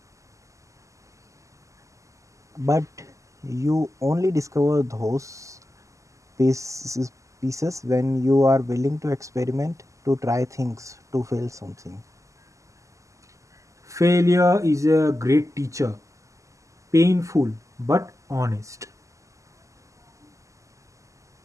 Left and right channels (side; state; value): left; late; 0.16 ms